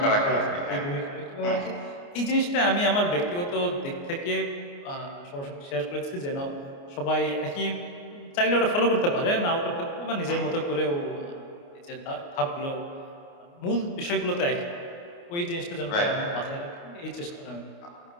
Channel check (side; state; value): right; late; 29 ms